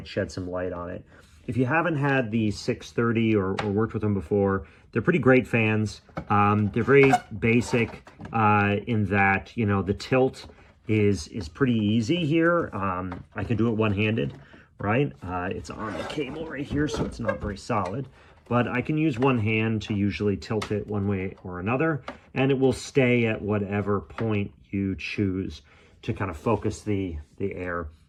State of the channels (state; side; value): identical; both; correlation 1.00